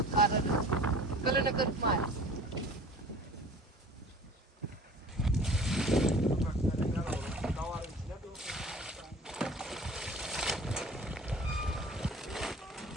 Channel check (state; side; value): normal; both; correlation 0.44